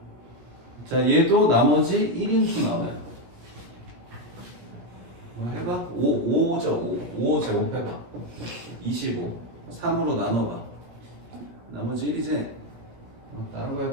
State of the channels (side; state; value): left; late; 17 ms